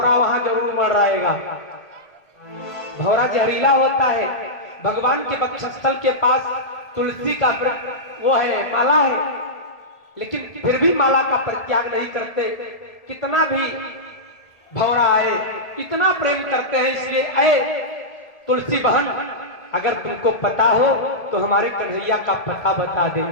वहां जरूर मडराएगा। भौरा जहरीला होता है, भगवान के वक्षस्थल के पास तुलसी का वृक्ष वो है, माला है, लेकिन फिर भी माला का परित्याग नहीं करते। कितना भी भौरा आए, इतना प्रेम करते हैं। इसलिए ऐ तुलसी बहन, अगर तुमको पता हो तो हमारे कन्हैया का पता बता दे।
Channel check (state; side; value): late; right; 1.8 ms